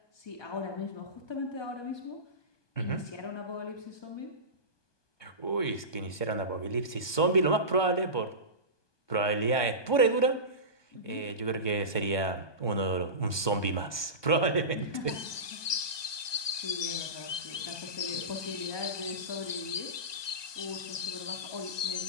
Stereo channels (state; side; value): late; right; 1.2 ms